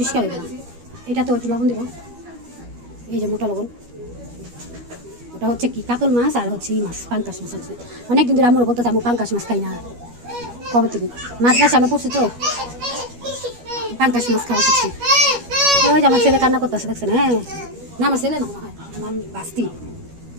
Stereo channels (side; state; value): left; late; 12 ms